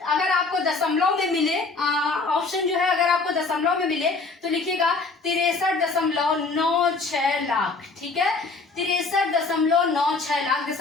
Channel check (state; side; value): quieter; right; 4.0 dB